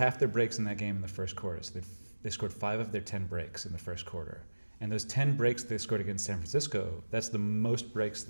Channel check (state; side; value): inverted; both; correlation -1.00